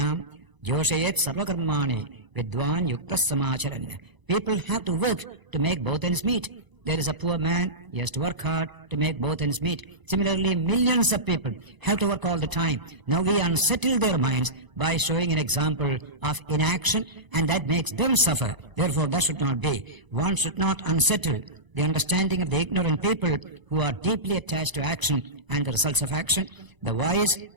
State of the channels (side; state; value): left; late; 1.0 ms